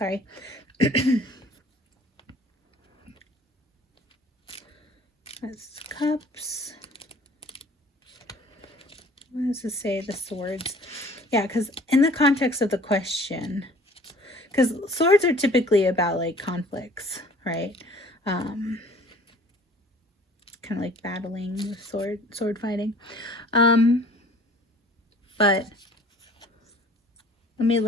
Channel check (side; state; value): both; normal; correlation 0.51